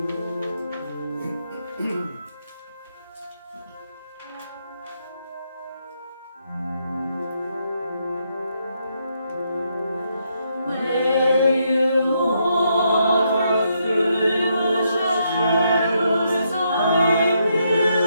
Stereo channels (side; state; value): both; inverted; correlation -0.77